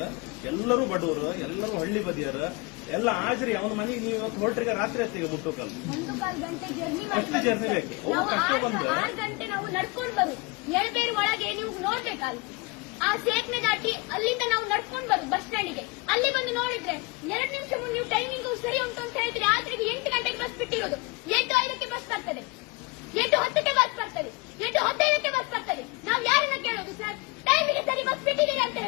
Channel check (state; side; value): quieter; right; 26.1 dB